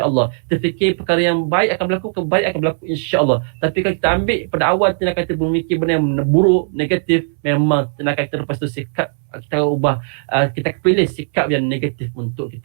Kita fikir perkara yang baik akan berlaku, kebaik akan berlaku insya-Allah. Tapi kalau kita ambil pada awal tindakan kita berfikir benda yang buruk, negatif, memang tindakan kita lepas tu sikap kita ubah, kita pilih sikap yang negatif untuk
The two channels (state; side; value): silent; left; 67 dB below the other